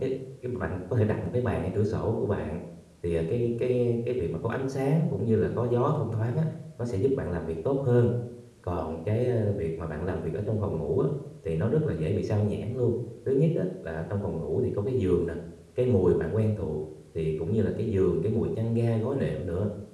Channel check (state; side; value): identical; both; correlation 1.00